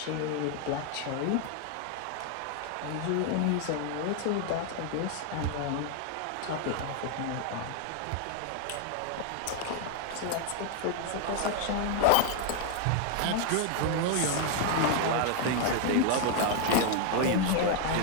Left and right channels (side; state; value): both; different; correlation 0.00